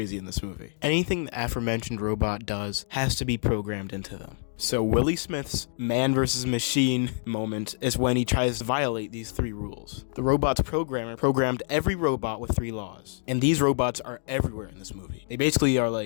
in this movie. Anything the aforementioned robot does has to be programmed into them. So Willie Smith's Man vs. Machine moment is when he tries to violate these 3 rules. The robot's programmer programmed every robot with 3 laws. And these robots are everywhere in this movie. They basically are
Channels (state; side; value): silent; right; digital silence